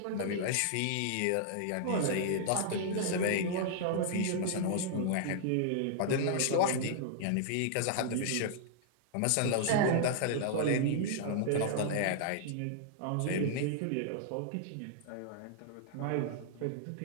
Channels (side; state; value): both; different; correlation -0.01